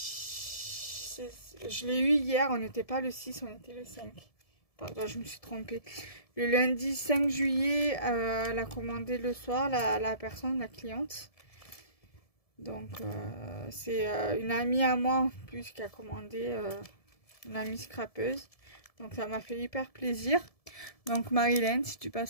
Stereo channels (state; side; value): late; right; 1.7 ms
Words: Je l'ai eu hier, on n'était pas le 6, on était le 5. Pardon, je me suis trompée. Le lundi 5 juillet, elle a commandé le soir, la personne, la cliente. Donc, c'est une amie à moi en plus qui a commandé, une amie scrapeuse. Donc, ça m'a fait hyper plaisir. Donc, Marilyn, si tu